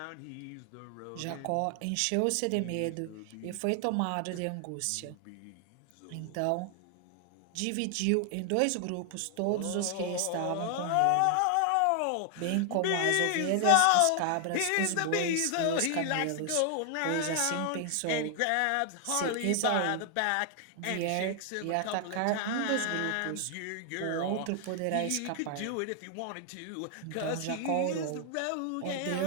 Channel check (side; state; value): both; different; correlation 0.00